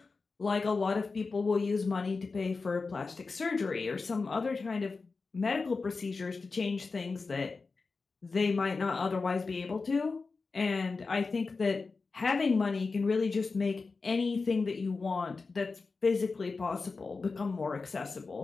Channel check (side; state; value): right; quieter; 4.2 dB